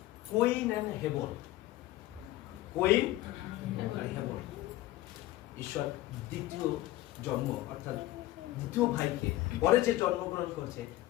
কোইন এন্ড হেবন, কোইন আর হেবন, ঈশ্বর দ্বিতীয় জন্ম অর্থাৎ দ্বিতীয় ভাইকে পরে যে জন্মগ্রহণ করেছে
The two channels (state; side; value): quieter; right; 16.3 dB